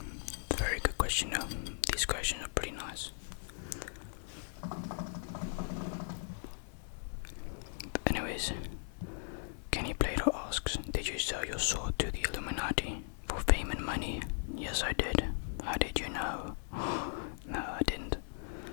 Very good question though. These questions are pretty nice. Anyways, Kenny Plato asks, did you sell your sword to the Illuminati for fame and money? Yes, I did. How did you know? No, I didn't.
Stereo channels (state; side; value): silent; right; digital silence